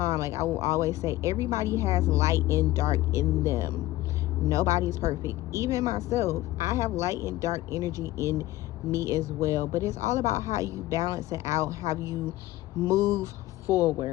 Like, I will always say, everybody has light and dark in them. Nobody's perfect. Even myself, I have light and dark energy in me as well. But it's all about how you balance it out, how you move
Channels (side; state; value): right; quieter; 16.6 dB